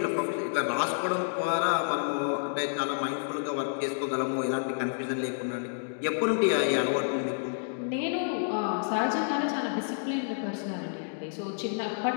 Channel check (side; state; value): right; silent; digital silence